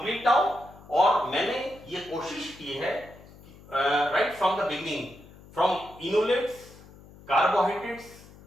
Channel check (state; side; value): noise; left; hum, 21 dB below the sound